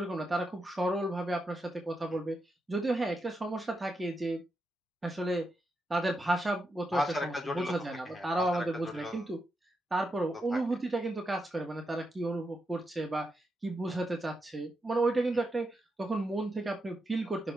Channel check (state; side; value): normal; both; correlation 0.85